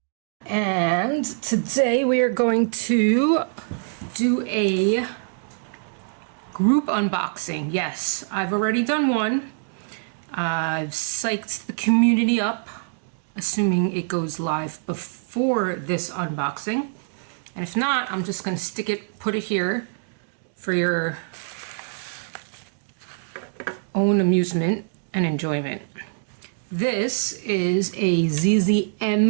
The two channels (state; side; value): silent; left; digital silence